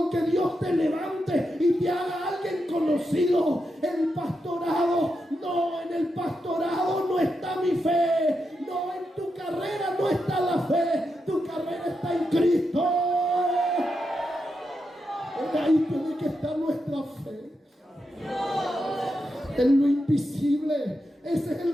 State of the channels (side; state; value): both; normal; correlation 0.86